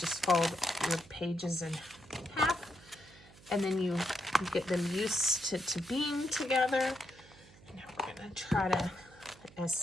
fold your pages in half, and then you get them used to being together. And now we're going to try to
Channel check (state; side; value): noise; right; hum, 23 dB below the sound